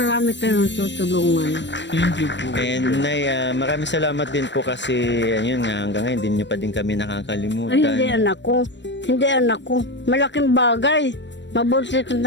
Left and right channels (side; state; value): right; late; 0.53 ms